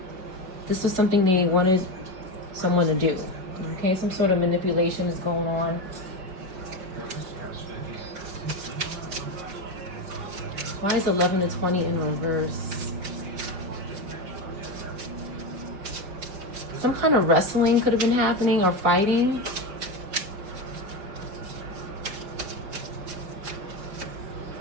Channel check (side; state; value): left; late; 5.1 ms